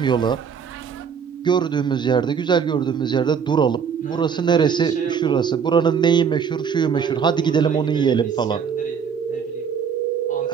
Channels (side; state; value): left; quieter; 6.8 dB